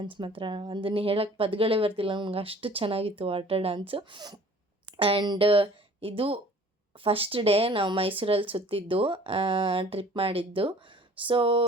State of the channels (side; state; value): both; normal; correlation 0.50